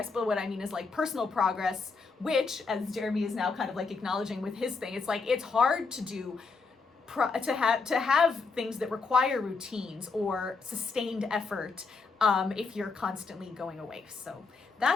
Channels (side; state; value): right; quieter; 4.4 dB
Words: But what I mean is like personal progress, which, as Jeremy is now kind of like acknowledging with his thing, it's like, it's hard to do to have things that require routines or sustained effort if you're constantly going away. So